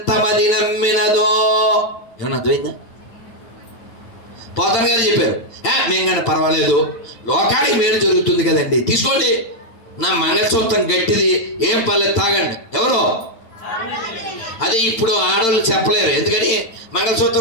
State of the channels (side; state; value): right; late; 8.9 ms